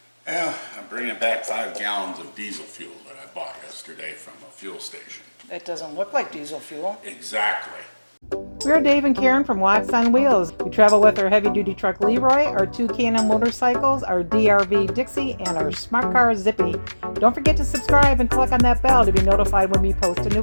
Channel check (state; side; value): inverted; both; correlation -1.00